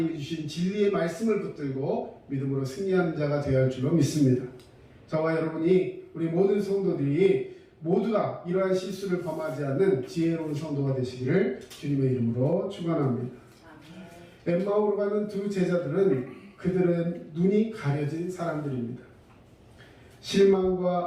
주신 진리의 말씀을 붙들고 믿음으로 승리하는 자가 되어야 할 줄로 믿습니다. 저와 여러분이, 우리 모든 성도들이 모두가 이러한 실수를 범하지 않는 지혜로운 성도가 되시기를 주님의 이름으로 축원합니다. 엠마오로 가는 두 제자들은 그들은 눈이 가려진 사람들입니다.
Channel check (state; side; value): identical; both; correlation 1.00